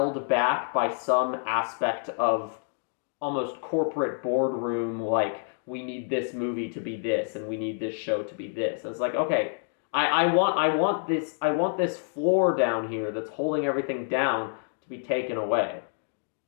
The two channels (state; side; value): silent; right; digital silence